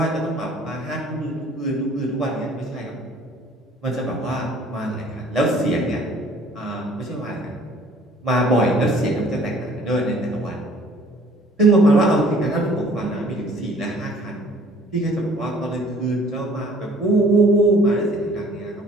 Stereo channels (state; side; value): normal; both; correlation 0.55